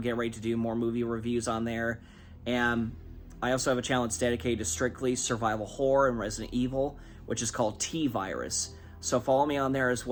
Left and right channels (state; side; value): identical; both; correlation 1.00